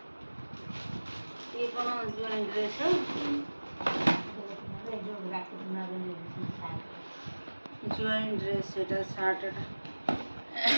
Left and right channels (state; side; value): inverted; both; correlation -1.00